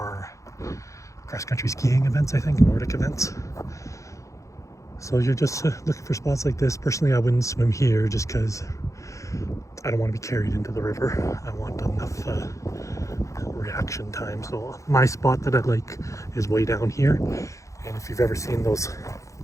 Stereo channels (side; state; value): right; late; 0.15 ms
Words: cross-country skiing events, I think, Nordic events. So you're just looking for spots like this. Personally, I wouldn't swim here just because I don't want to be carried into the river. I want enough reaction time. So my spot that I like is way down here. And if you've ever seen those